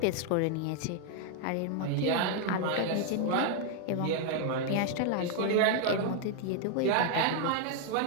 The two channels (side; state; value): both; different; correlation 0.00